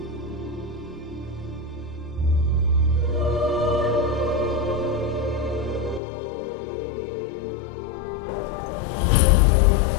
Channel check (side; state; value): right; drops out; at 6.0 s